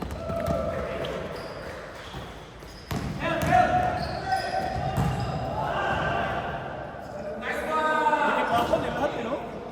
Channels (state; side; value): identical; both; correlation 1.00